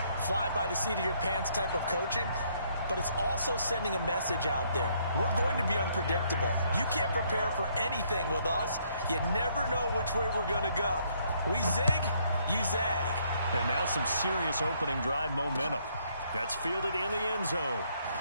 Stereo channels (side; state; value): both; inverted; correlation -0.69